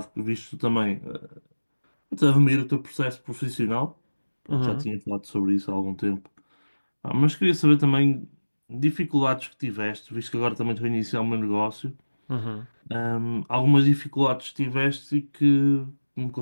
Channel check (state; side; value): inverted; both; correlation -1.00